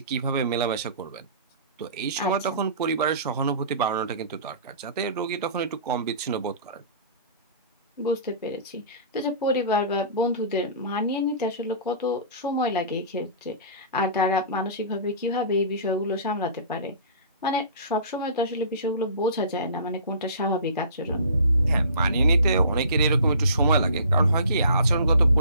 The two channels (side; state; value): both; inverted; correlation -0.44